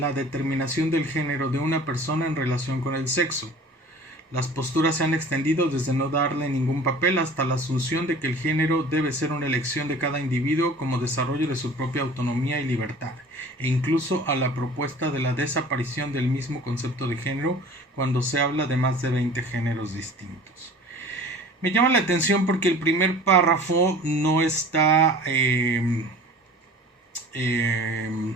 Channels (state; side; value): normal; both; correlation 0.44